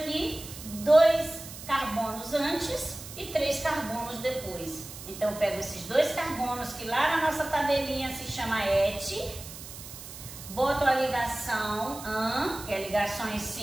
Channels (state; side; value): noise; right; hiss, 13 dB below the sound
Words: 2 carbonos antes e 3 carbonos depois. Então, eu pego esses 2 carbonos, que lá na nossa tabelinha se chama ET, boto a ligação AN, que é ligações